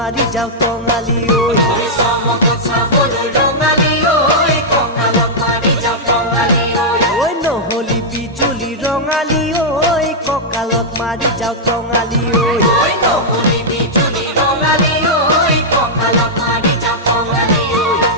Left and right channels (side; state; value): both; normal; correlation -0.08